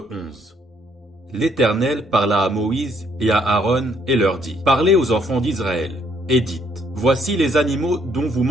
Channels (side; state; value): both; normal; correlation 0.67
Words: 11. L'Éternel parla à Moïse et à Aaron et leur dit: Parlez aux enfants d'Israël, et dites: Voici les animaux dont vous